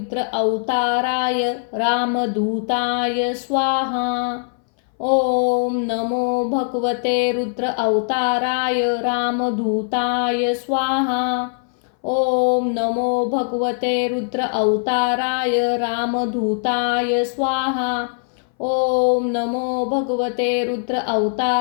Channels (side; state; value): right; silent; 61 dB below the other